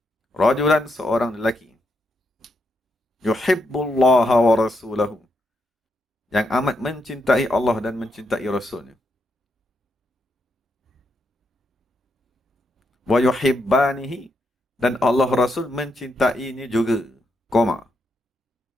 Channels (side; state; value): both; normal; correlation 0.80